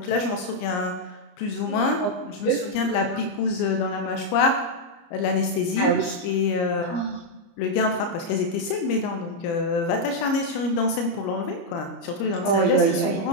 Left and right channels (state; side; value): late; right; 30 ms